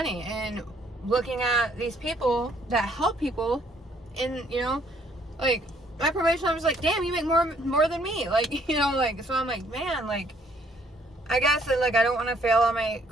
and looking at these people that help people, and you know, like my probation officer's like, damn, you make more than me, like, you know, like, so I'm like, man, like, I guess that, like, I don't want to fail on my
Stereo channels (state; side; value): normal; both; correlation 0.64